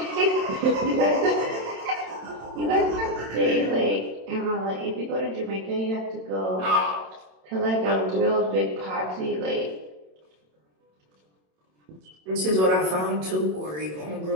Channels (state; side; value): late; left; 27 ms